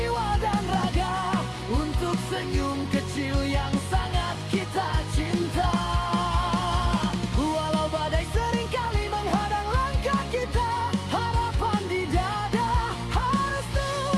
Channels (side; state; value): both; identical; correlation 1.00